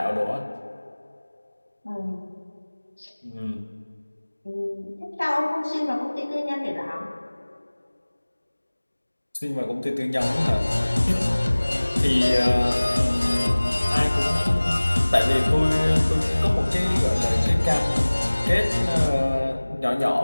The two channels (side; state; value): both; inverted; correlation -1.00